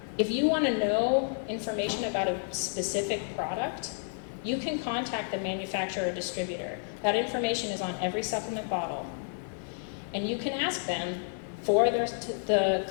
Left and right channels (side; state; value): right; silent; 57 dB below the other